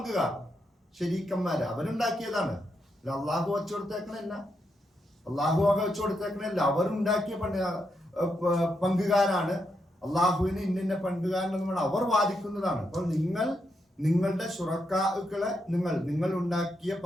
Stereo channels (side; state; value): both; normal; correlation 0.82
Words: ശരീക്കന്മാര്, അവരുണ്ടാക്കിയതാണ്. അള്ളാഹു വെച്ചു കൊടുത്തേക്കണല്ല, അവരുണ്ടാക്കിയ പങ്കുകാരാണ്. അള്ളാഹുവിന് ഇന്ന പങ്കുകാരനെന്ന് അവർ വാദിക്കുന്നതാണ്. അപ്പോൾ നിങ്ങളുടെ ശുറക്കാക്കളെ, നിങ്ങൾ ഉണ്ടാക്കിയ